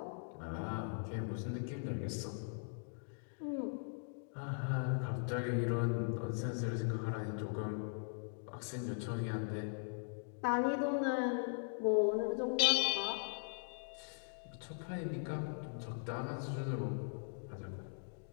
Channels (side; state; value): right; silent; digital silence